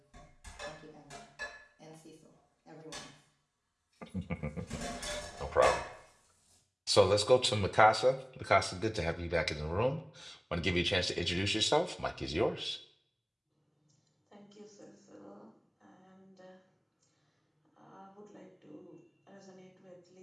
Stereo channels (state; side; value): identical; both; correlation 1.00